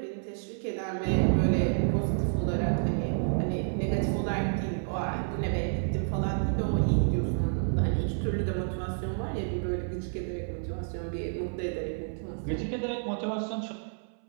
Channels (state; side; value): silent; left; 58 dB below the other